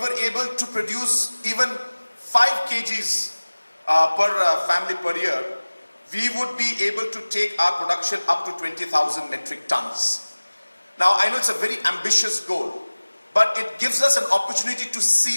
able to produce even 5 kgs per family per year, we would be able to take our production up to 20,000 metric tons. Now, I know it's a very ambitious goal, but it gives us an opportunity to see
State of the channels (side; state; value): both; inverted; correlation -1.00